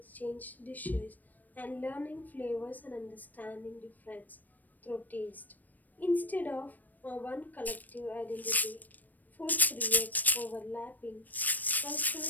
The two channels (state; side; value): late; right; 0.085 ms